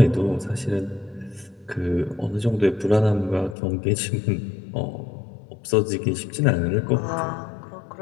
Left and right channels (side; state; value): right; drops out; at 3.6 s